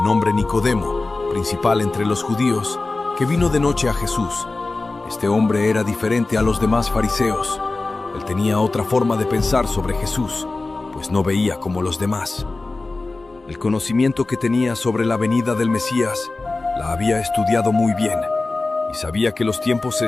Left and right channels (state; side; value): quieter; right; 3.4 dB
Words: nombre Nicodemo, principal entre los judíos, que vino de noche a Jesús. Este hombre era diferente a los demás fariseos. Él tenía otra forma de pensar sobre Jesús, pues no veía como los demás. El conocimiento que tenía sobre la venida del Mesías la había estudiado muy bien y sabía que los tiempos se